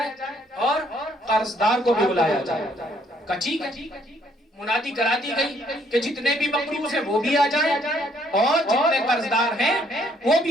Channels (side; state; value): both; normal; correlation 0.66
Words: اور قرضدار کو بھی بلایا جائے۔ کہا ٹھیک ہے، منادی کرا دی گئی کہ جتنے بھی مقروض ہیں وہ بھی آ جائیں اور جتنے قرضدار ہیں وہ